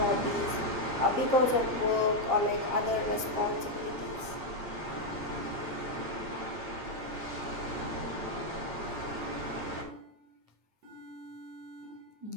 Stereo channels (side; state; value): left; late; 8.8 ms